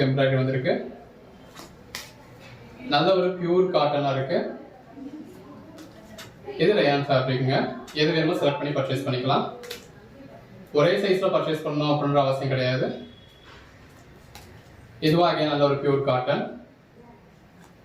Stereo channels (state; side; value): identical; both; correlation 1.00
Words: எம்ப்ராய்டரி வந்திருக்கு. நல்ல ஒரு பியூர் காட்டனா இருக்கு. இது ரயான் ஃபேப்ரிக்ங்க. எது வேணுமோ செலக்ட் பண்ணி பர்ச்சேஸ் பண்ணிக்கலாம். ஒரே சைஸ்ல பர்ச்சேஸ் பண்ணணும் அப்படின்ற அவசியம் கிடையாது. இதுவா அகைன் நல்ல ஒரு பியூர் காட்டன்.